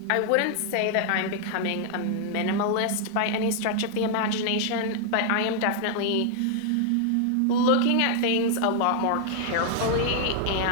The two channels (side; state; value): both; different; correlation 0.00